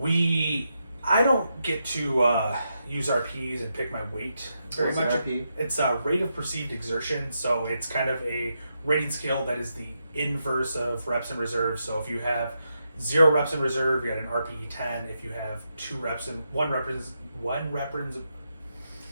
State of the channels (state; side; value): inverted; both; correlation -0.84